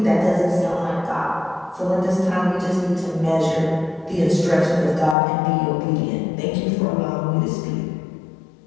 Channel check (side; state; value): right; drops out; at 5.2 s